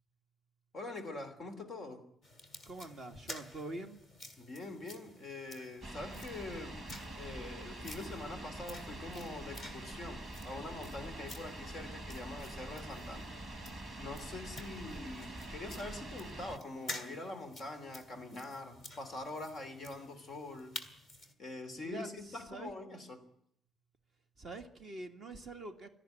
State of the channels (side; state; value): both; normal; correlation 0.69